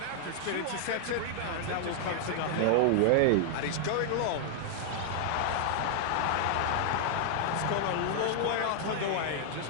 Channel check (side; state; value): both; different; correlation 0.00